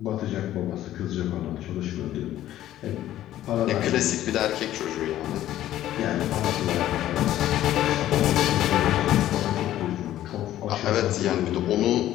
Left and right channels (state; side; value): quieter; right; 13.1 dB